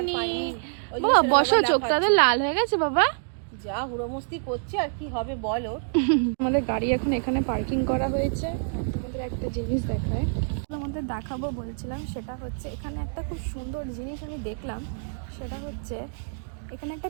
বাবা বসো, চোখটাতে লাল হয়ে গেছে বাবা। যা হুড়োমস্তি করছে আর কি হবে বলো। আমাদের গাড়ি এখন এখানে পার্কিং করা হয়েছে। তোমাদের একটা জিনিস দেখায়, তোমাদের দেখাবো বলছিলাম, সেটা হচ্ছে এখানে একটা খুব সুন্দর জিনিস আমি দেখলাম। সেটা হচ্ছে এখানে একটা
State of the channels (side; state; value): left; silent; digital silence